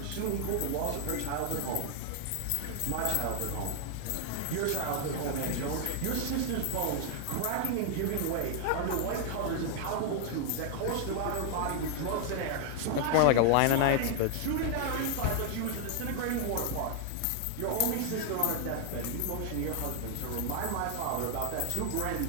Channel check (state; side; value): different; both; correlation 0.00